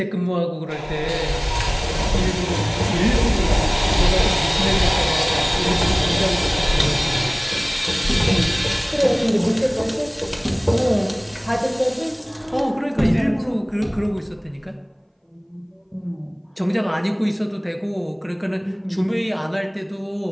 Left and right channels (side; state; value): both; identical; correlation 1.00